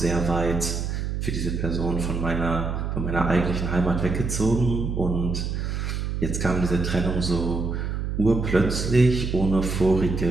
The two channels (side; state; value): right; noise; hum, 2 dB below the sound